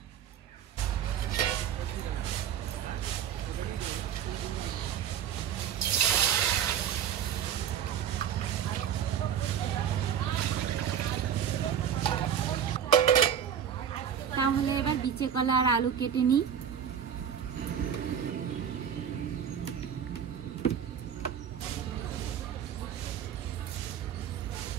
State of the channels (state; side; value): quieter; left; 8.7 dB